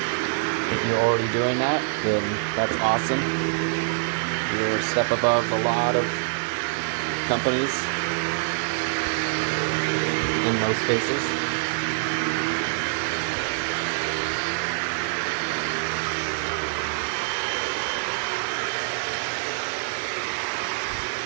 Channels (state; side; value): silent; left; digital silence